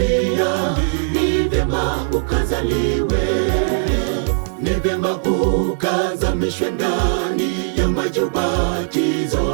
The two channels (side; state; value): left; silent; digital silence